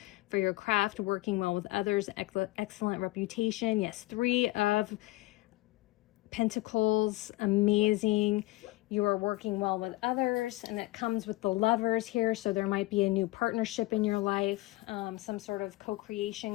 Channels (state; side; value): quieter; right; 20.1 dB